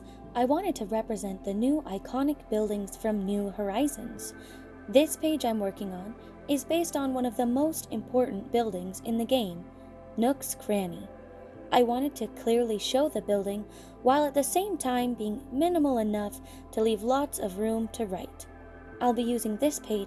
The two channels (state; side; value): identical; both; correlation 1.00